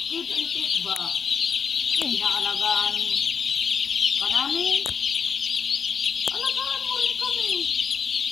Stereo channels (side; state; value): right; quieter; 6.5 dB